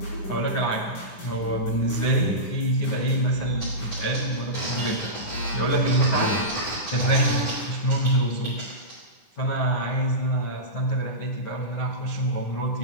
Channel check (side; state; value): right; late; 10 ms